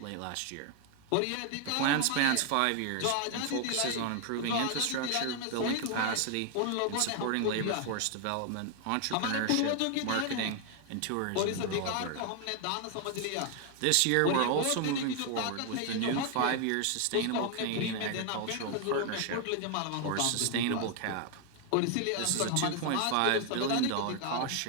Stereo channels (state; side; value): different; both; correlation 0.00